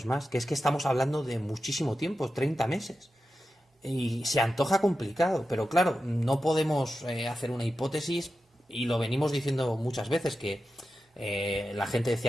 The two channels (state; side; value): normal; both; correlation 0.91